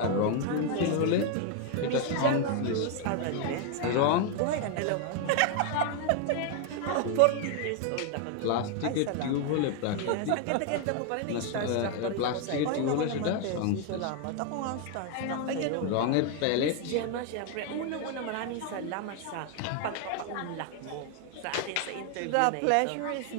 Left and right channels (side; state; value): both; different; correlation 0.01